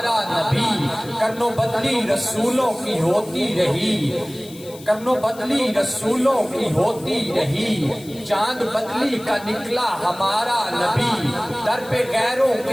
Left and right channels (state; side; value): noise; left; hiss, 20 dB below the sound